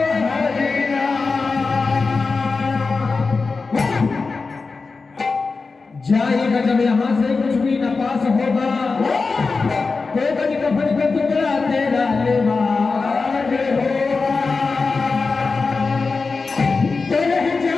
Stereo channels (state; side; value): quieter; right; 4.3 dB